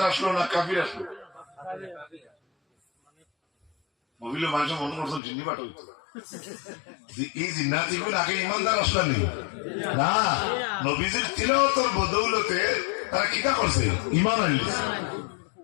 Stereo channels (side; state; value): right; drops out; at 5.2 s